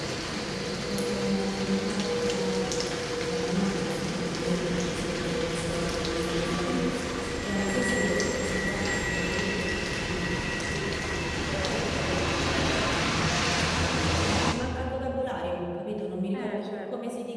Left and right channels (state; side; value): identical; both; correlation 1.00